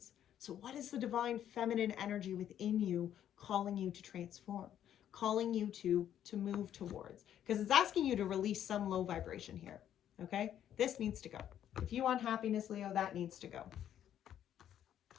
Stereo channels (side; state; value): right; quieter; 10.5 dB